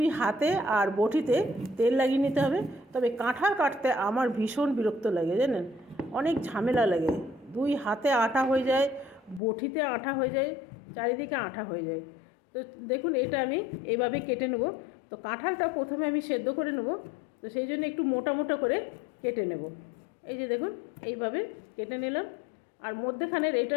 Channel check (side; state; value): right; drops out; at 9.4 s